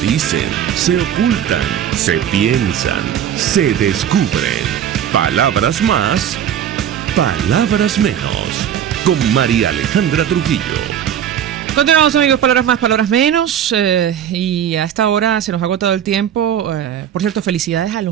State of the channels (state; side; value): quieter; left; 9.6 dB